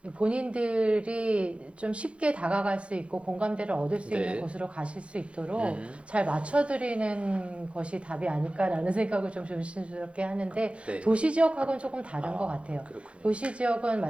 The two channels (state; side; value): late; left; 0.060 ms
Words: 본인들이 좀 쉽게 다가갈 수 있고 공감대를 얻을 수 네. 있는 곳으로 가실 수 있도록 잘 맞춰드리는 것이 답이 아닐까라는 생각을 좀 조심스럽게 하는데 네. 도시 지역하고는 조금 다른 것 같아요. 그렇군요. 도시 지역은